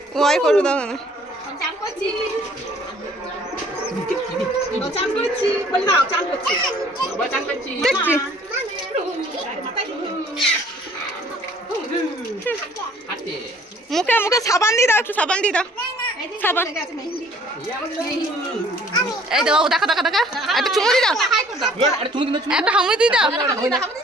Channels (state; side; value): normal; both; correlation 0.56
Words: ওই করু দাও না, মুখে মুখে সাবান দিয়ে দাও, একটু সাবান দিয়ে দাও, সাবান। এই দাও দেখা দেখা দেখা, একটা চুমু দিয়ে দাও, একটা হামি দিয়ে দাও।